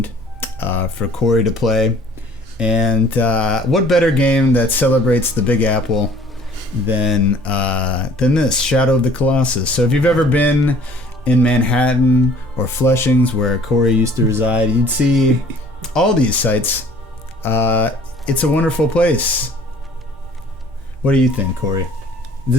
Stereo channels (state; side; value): normal; both; correlation 0.53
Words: for Corey to play. And what better game that celebrates the Big Apple than this, Shadow of the Colossus. So if you've ever been in Manhattan or Flushings, where Corey used to reside, you'd see all these sites. It's a wonderful place. What do you think, Corey?